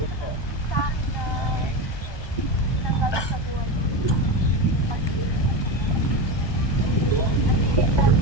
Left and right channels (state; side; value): late; right; 1.2 ms